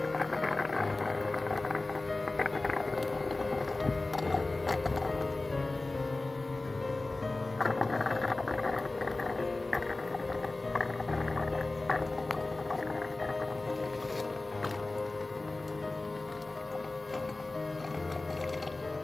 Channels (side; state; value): right; quieter; 3.1 dB